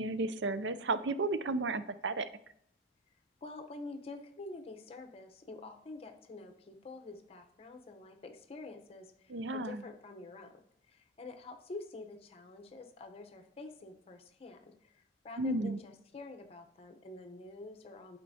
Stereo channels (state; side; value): normal; both; correlation 0.16